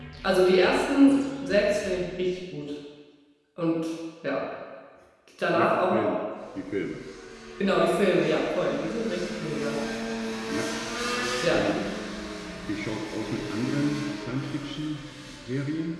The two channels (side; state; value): both; identical; correlation 1.00